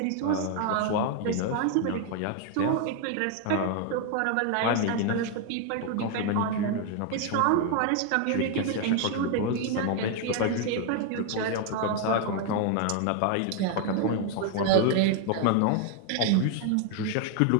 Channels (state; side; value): different; both; correlation 0.00